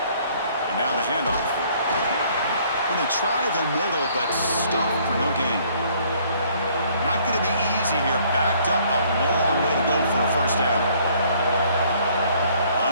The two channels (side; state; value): both; inverted; correlation -0.61